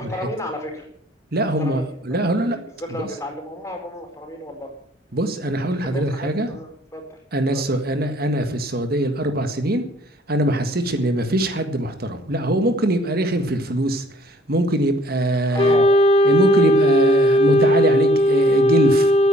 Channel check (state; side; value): normal; both; correlation 0.59